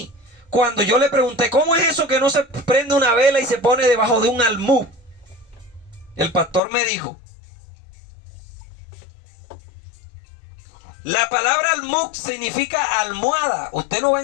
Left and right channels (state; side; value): drops out; right; at 6.6 s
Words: cuando yo le pregunté, ¿cómo es eso que no se prende una vela y se pone debajo de un almud? El pastor me dijo, la palabra almud significa almohada. Usted no va a